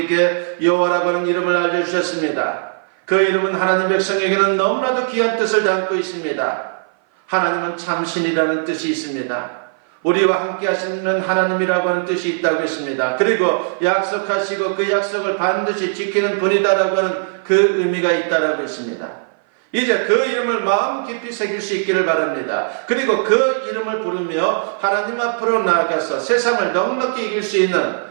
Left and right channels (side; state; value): left; silent; 57 dB below the other